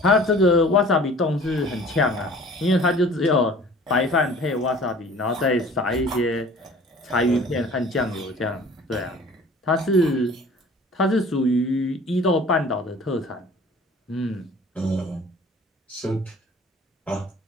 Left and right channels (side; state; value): both; normal; correlation 0.47